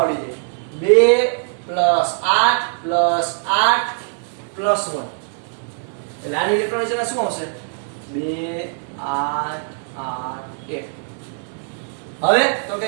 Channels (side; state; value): left; silent; 65 dB below the other